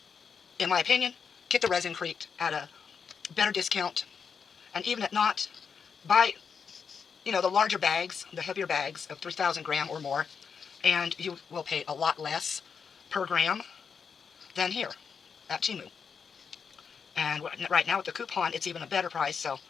in my opinion, get the ResinCrete at a better discount. And even if not, buy, the larger bags, the heavier bags of 3,000 gram or more, and you will pay a lot less per gram than here at Temu. And right now with the coupon, it's even a better price, so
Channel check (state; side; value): quieter; right; 6.2 dB